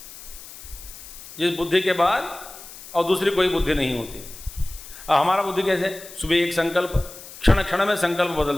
जिस बुद्धि के बाद और दूसरी कोई बुद्धि नहीं होती। अब हमारा बुद्धि कैसे, सुबह एक संकल्प, क्षण क्षण में संकल्प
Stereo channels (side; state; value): left; noise; hiss, 16 dB below the sound